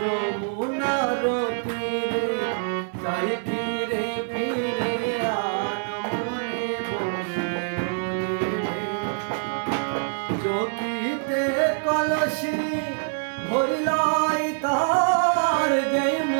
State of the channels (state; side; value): silent; left; digital silence